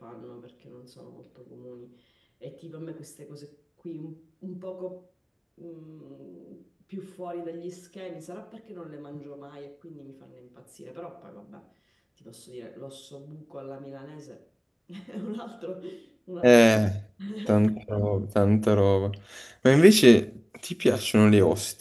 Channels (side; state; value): both; identical; correlation 1.00